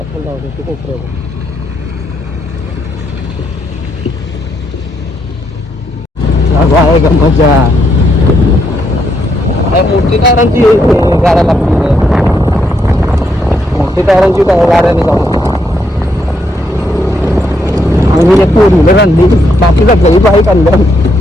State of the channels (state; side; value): normal; both; correlation 0.77